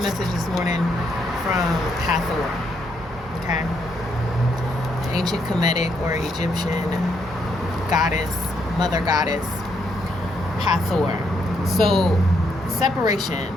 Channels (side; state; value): both; normal; correlation 0.75